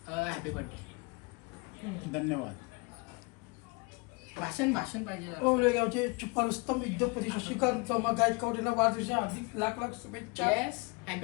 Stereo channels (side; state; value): right; quieter; 29.1 dB